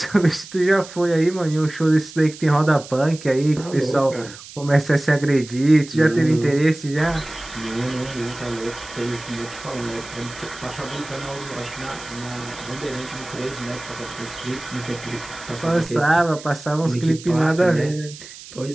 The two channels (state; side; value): noise; right; hiss, 16 dB below the sound